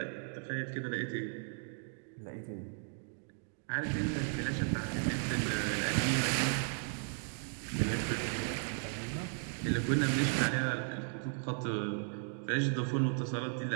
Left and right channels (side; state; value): left; silent; 54 dB below the other